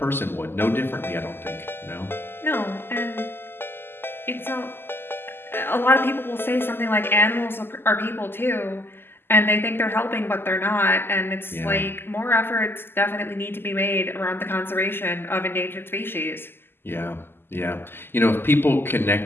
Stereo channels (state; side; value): late; right; 0.11 ms